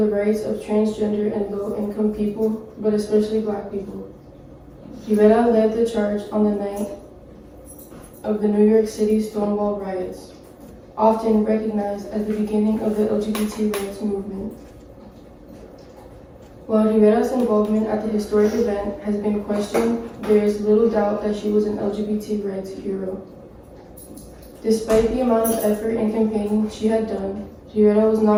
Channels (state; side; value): identical; both; correlation 1.00